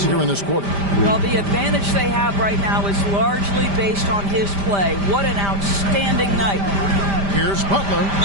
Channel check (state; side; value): late; left; 5.0 ms